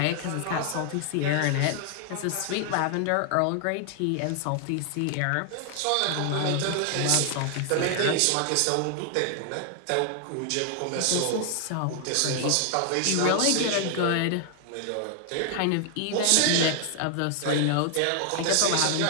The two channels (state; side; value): different; both; correlation 0.00